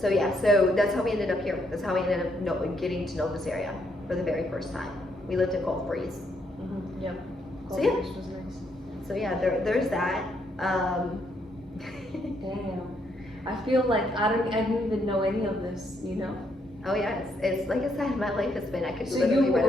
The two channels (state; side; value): normal; both; correlation 0.74